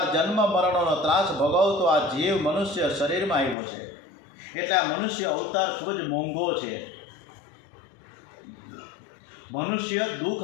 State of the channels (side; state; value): right; drops out; at 3.6 s